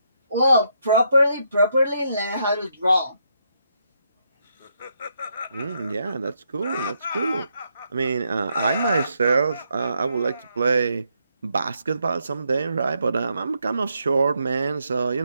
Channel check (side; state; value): both; inverted; correlation -0.77